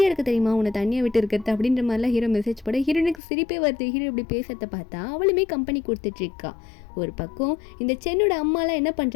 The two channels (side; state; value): right; drops out; at 3.2 s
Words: இருக்குது தெரியுமா உன்னை தனியாக விட்டு இருக்கிறது அப்படின்ற மாதிரிலாம் ஹீரோ மெசேஜ் போட ஹீரோனுக்கு சிரிப்பே வருது. ஹீரோ இப்படி பேசுறத பார்த்தா அவளுமே கம்பெனி கொடுத்துட்டு இருக்கா. ஒரு பக்கம் இந்த சென்னோட அம்மாலாம் என்ன